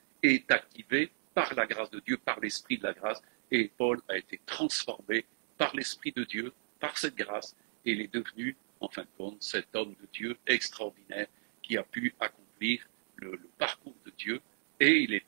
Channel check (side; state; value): left; silent; digital silence